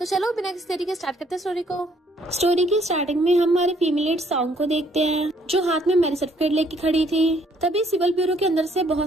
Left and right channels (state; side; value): normal; both; correlation 0.65